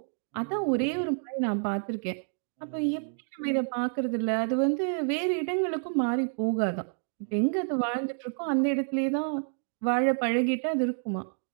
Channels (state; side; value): silent; left; 59 dB below the other